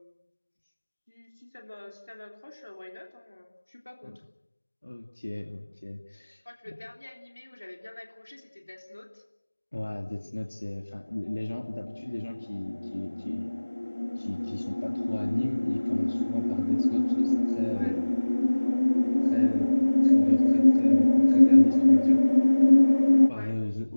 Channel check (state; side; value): inverted; both; correlation -1.00